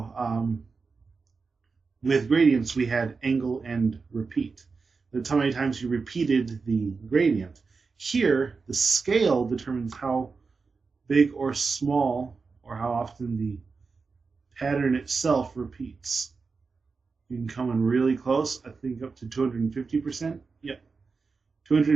with gradients, we had angle and repeat. That's how many times you repeated the gradient. Here, the scale determines how big or small, or how often the pattern itself repeats. You can come in really close, I think up to 250%. Yep.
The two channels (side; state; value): left; quieter; 4.6 dB